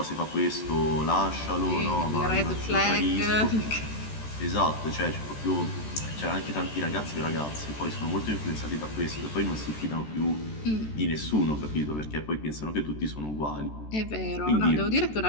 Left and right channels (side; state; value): right; late; 14 ms